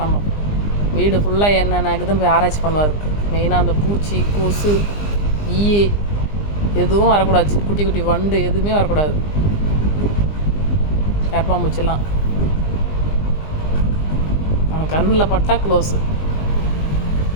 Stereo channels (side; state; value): right; late; 20 ms